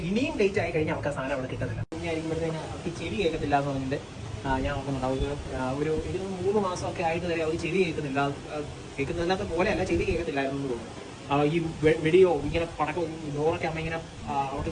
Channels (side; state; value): both; identical; correlation 1.00